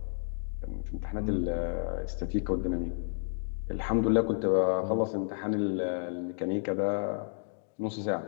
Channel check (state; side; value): silent; right; digital silence